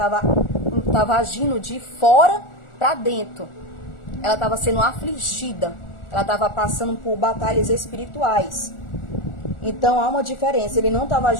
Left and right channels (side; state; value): right; late; 1.4 ms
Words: agindo de fora para dentro. Ela estava sendo afligida, ela estava passando por batalhas espirituais. Então há uma diferença, ele não estava